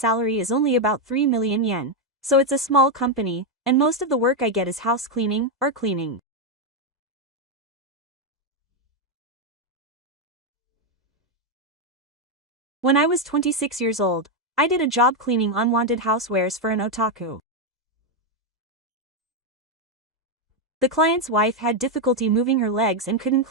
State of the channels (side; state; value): both; normal; correlation 0.03